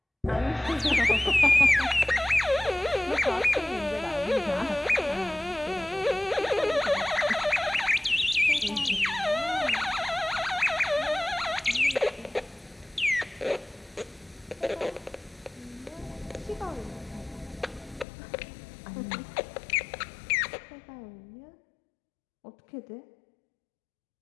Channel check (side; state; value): right; drops out; at 18.1 s